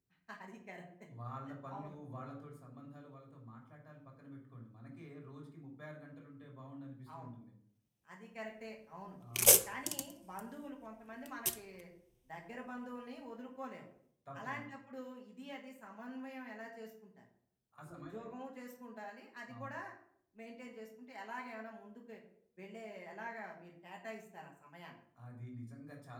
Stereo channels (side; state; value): both; identical; correlation 1.00